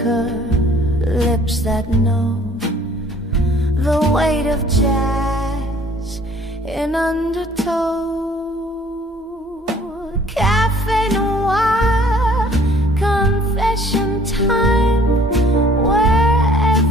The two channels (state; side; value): normal; both; correlation 0.56